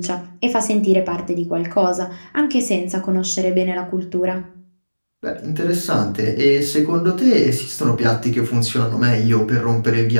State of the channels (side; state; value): both; inverted; correlation -1.00